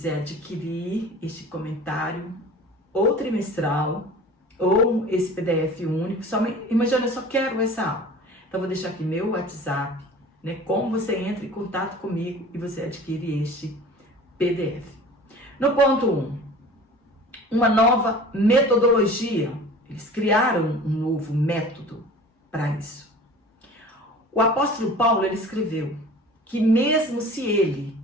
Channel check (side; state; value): both; normal; correlation 0.41